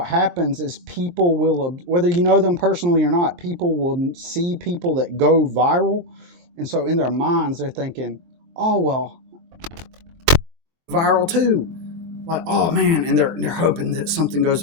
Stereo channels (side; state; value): left; late; 23 ms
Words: happens is people will, whether you know them personally or not, people will see people that go viral. And so in their minds, they're thinking, oh, well, viral too. Like, oh man, and they're hoping that something